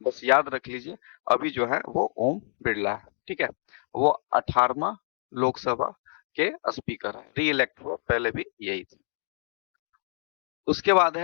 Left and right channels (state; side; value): silent; right; digital silence